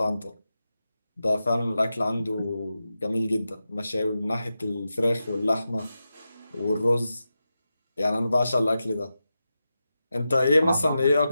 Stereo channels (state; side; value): inverted; both; correlation -0.91